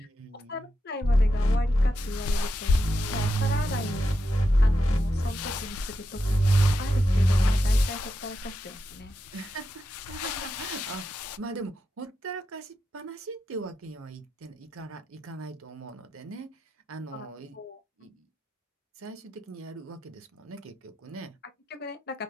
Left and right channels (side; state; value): both; normal; correlation 0.87